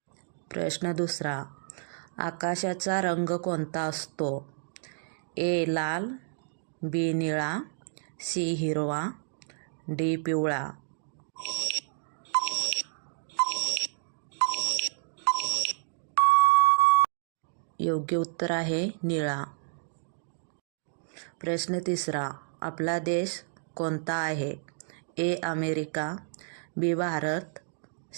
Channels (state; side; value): silent; left; digital silence